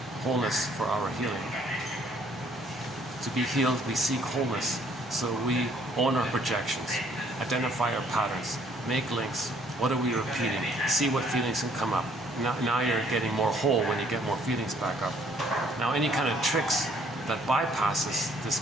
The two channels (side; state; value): both; normal; correlation 0.63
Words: wholeness for our healing. To be healed, we seek wholeness. So we own our projections, identify our patterns, make links. What are we repeating? See what feelings can come up. Now you're getting more whole when you get more feelings back up. Now any kind of tricks that bypasses this